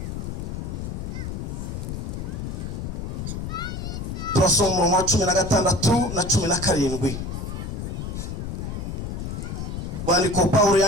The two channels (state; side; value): noise; left; rumble, 5 dB below the sound